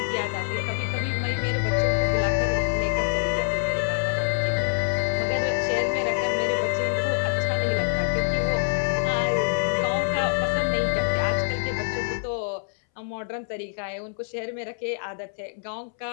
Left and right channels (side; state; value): right; silent; 61 dB below the other